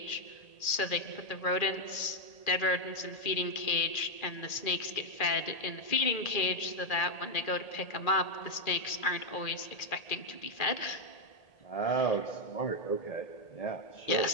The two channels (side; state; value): right; late; 1.8 ms